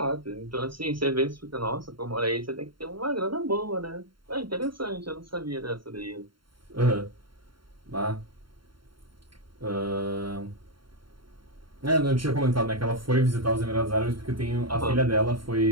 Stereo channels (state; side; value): late; left; 0.73 ms